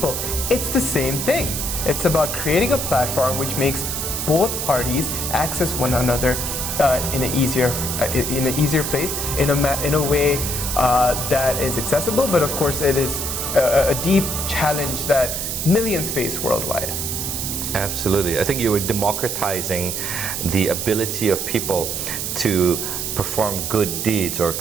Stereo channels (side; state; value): right; noise; hiss, 3 dB below the sound